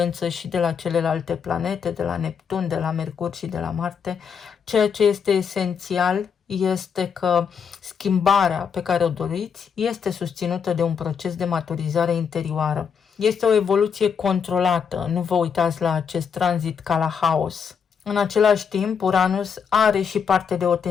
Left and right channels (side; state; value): right; quieter; 6.8 dB